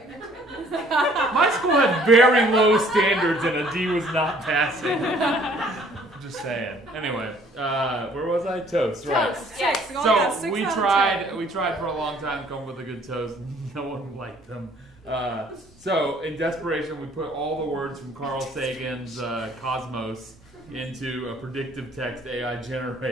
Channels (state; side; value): normal; both; correlation 0.58